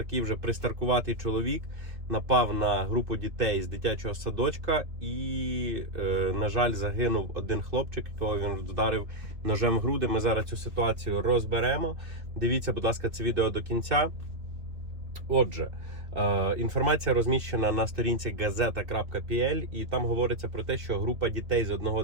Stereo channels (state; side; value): late; left; 2.5 ms